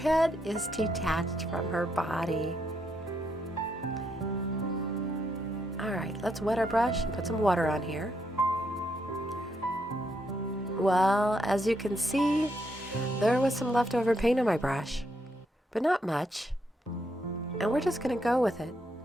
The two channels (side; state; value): both; normal; correlation 0.77